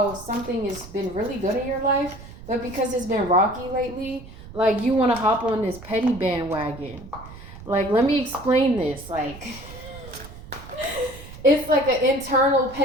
something has been really good in your life, but because it's been rocky lately, like you want to hop on this petty bandwagon. Like, let me explain this. Like, it's like an internal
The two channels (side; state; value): right; noise; rumble, 16 dB below the sound